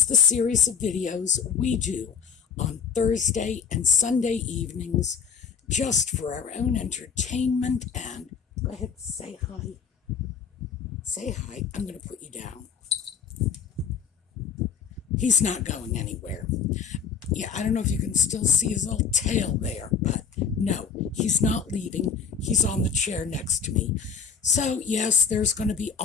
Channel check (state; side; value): quieter; right; 6.7 dB